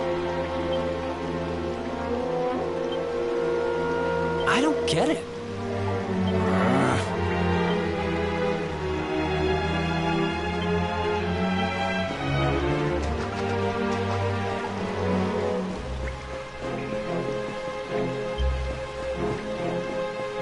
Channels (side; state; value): both; identical; correlation 1.00